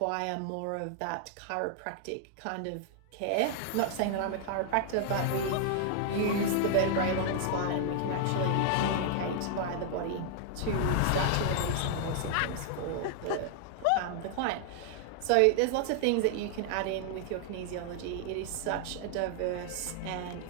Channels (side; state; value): both; different; correlation 0.00